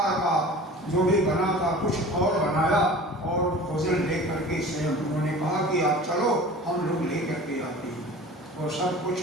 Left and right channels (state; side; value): normal; both; correlation 0.41